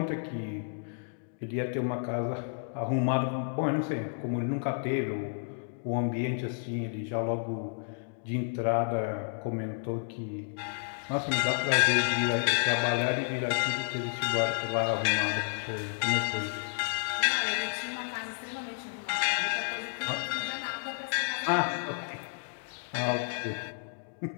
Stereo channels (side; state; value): right; silent; digital silence